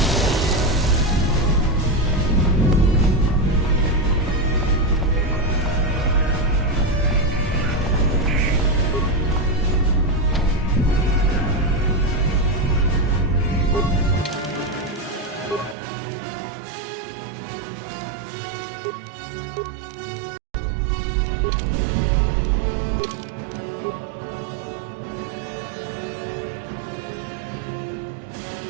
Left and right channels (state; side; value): drops out; left; at 15.8 s